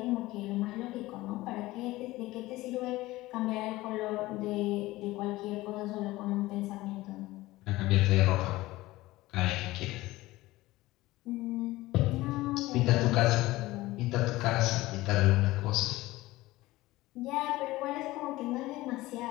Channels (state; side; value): quieter; right; 18.4 dB